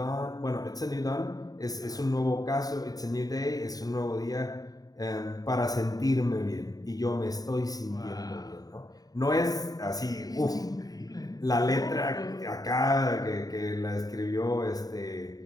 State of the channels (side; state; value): right; late; 0.18 ms